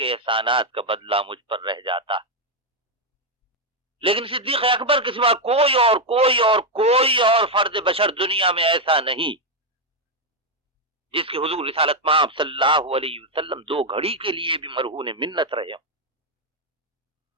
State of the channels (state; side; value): normal; both; correlation 0.03